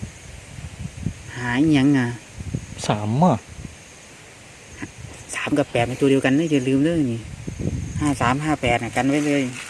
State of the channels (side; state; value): both; identical; correlation 1.00